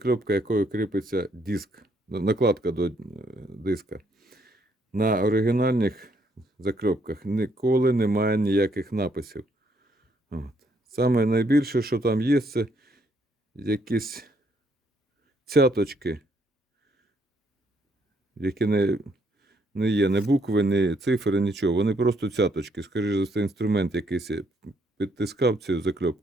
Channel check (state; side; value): normal; both; correlation 0.70